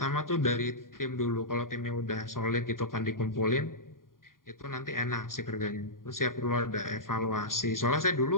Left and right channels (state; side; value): late; right; 0.91 ms